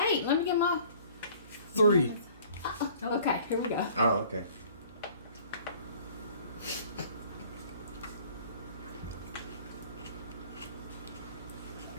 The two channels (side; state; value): both; inverted; correlation -0.51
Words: let me get my. 3. Okay, here we go. Oh, okay.